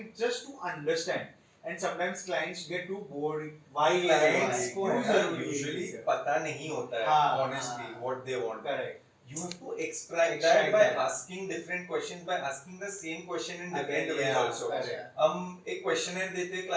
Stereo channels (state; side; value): identical; both; correlation 1.00